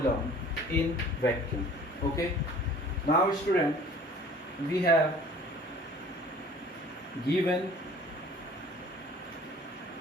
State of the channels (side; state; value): both; normal; correlation 0.49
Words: in vacuum. Okay. Now student, we have given